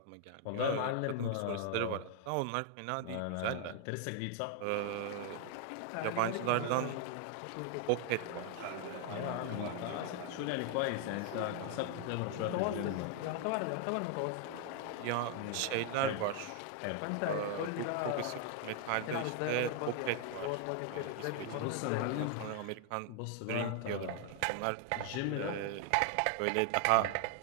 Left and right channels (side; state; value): both; different; correlation 0.00